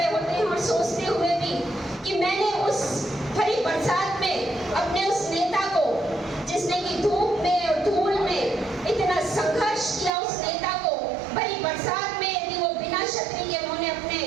होते हैं और सोचते हुए भी कि मैंने उस भरी बरसात में अपने उस नेता को, जिसने की धूप में और धूल में इतना संघर्ष किया, उस नेता को भरी बरसात में यदि वो बिना छतरी के, उन्होंने अपने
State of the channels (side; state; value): left; drops out; at 10.1 s